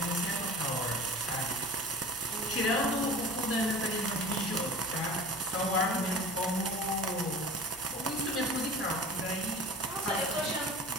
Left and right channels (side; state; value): both; normal; correlation 0.37